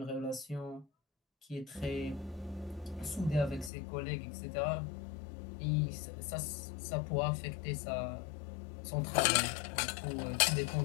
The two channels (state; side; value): drops out; right; at 3.7 s